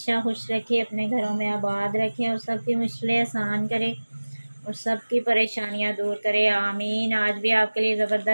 खुश रखे, अपने घरों में आबाद रखे और सबकी मुश्किलें आसान करे और सबकी परेशानियां दूर करे, आमीन। आज भी आपके लिए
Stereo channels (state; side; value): inverted; both; correlation -1.00